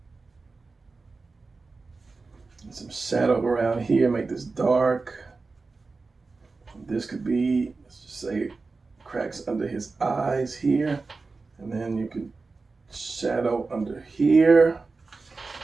And some shadow around here, make this dark. This could be, let's just say, cracks under his eyes here. And then you can shadow under here.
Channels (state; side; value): quieter; left; 4.0 dB